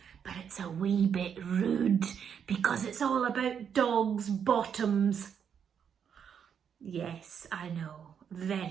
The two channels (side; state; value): left; quieter; 7.7 dB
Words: but it's a wee bit rude because it's all about dogs' bottoms. Yes, I know,